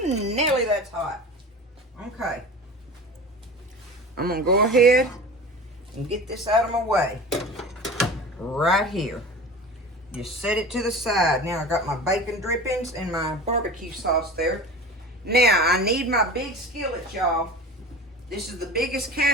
Nelly, that's hot. Okay. I'm going to go ahead and get this out of my way. Right here. Just set it to the side. Now I got my bacon drippings and my barbecue sauce there. Now I need my big skillet, y'all. This is the biggest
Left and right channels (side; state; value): both; normal; correlation 0.35